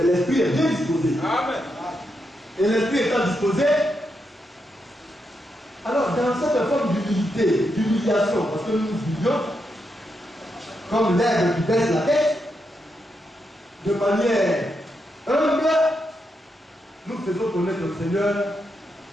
l'esprit est bien disposé. Amen. Et l'esprit étant disposé, alors dans cette forme d'humilité, d'humiliation, parce que nous nous humilions, comme l'aigle qui baisse la tête, de manière humble, nous faisons connaître au Seigneur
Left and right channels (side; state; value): both; normal; correlation 0.83